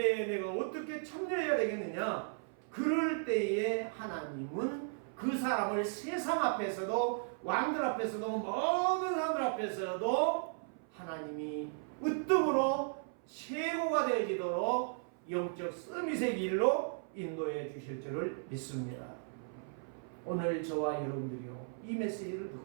내가 어떻게 참여해야 되겠느냐. 그럴 때에 하나님은 그 사람을 세상 앞에서도 왕들 앞에서도 모든 사람들 앞에서도 하나님이 으뜸으로 최고가 되어지도록 영적 서밋의 길로 인도해 주실 줄을 믿습니다. 오늘 저와 여러분들이요, 이 메시지를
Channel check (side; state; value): left; silent; 54 dB below the other